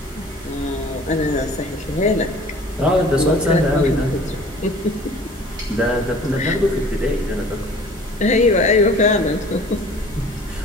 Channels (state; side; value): normal; both; correlation 0.48